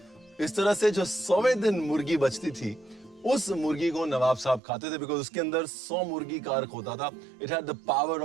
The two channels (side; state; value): left; drops out; at 4.6 s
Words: इस तरह से जो 100वें दिन मुर्गी बचती थी उस मुर्गी को नवाब साहब खाते थे, बिकॉज उसके अंदर 100 मुर्गी का अर्क होता था। It had the power